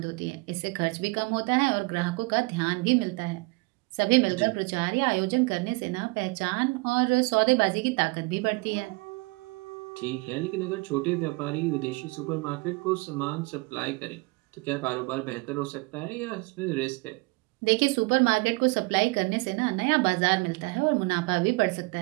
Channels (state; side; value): quieter; left; 26.7 dB